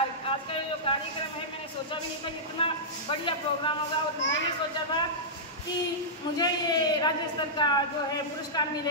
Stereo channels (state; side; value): normal; both; correlation -0.13